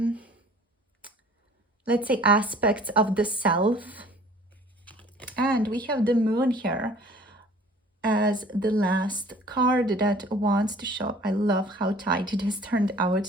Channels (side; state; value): both; normal; correlation 0.50